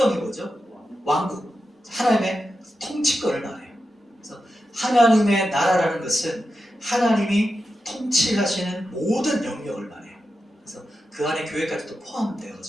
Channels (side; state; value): both; normal; correlation 0.90